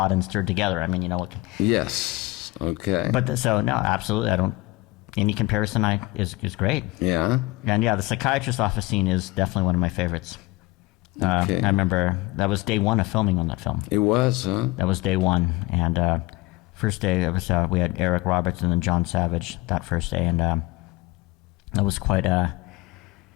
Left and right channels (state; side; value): quieter; right; 20.6 dB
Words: and stirred together. I mean, you know what? Yes. Okay. But no, absolutely. Any comparison is great. Yeah. And yeah, the psychiatrist's office scene is definitely one of my favorites. Okay. I remember that was day one of filming on that film. It was, huh? That was day one. And first day, it was, we had Eric Roberts and then John Savage that first day. And that was quite